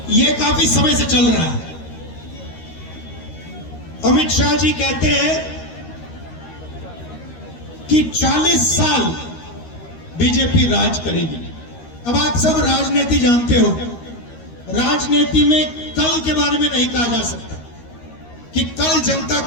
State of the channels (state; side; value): late; right; 13 ms